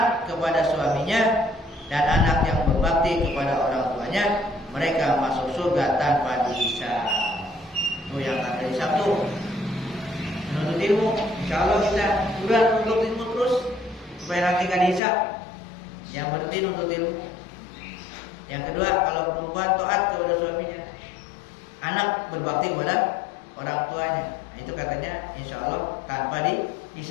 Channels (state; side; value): drops out; right; at 15.0 s